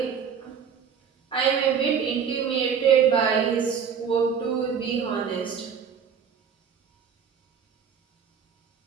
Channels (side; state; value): left; quieter; 7.1 dB